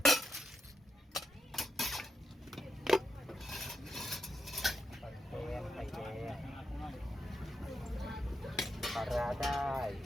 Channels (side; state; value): both; normal; correlation 0.84